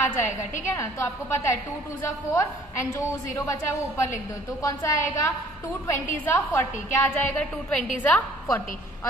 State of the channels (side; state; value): both; normal; correlation 0.56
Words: जाएगा, ठीक है ना। तो आपको पता है 2 2 जा 4, एंड जो 0 बचा है वो ऊपर लिख दो, तो कौन सा आएगा 2 20 जा 40, क्या आ जाएगा 2 20 जा 40।